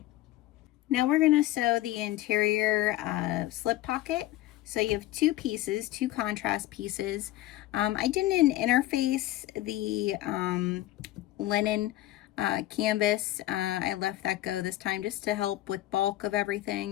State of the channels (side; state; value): right; quieter; 15.3 dB